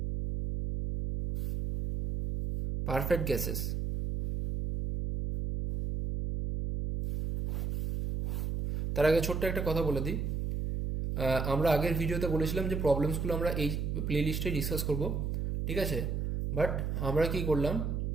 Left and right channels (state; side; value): noise; right; hum, 1 dB below the sound